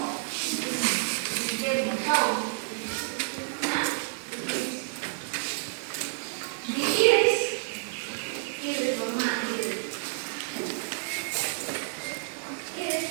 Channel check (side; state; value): left; silent; digital silence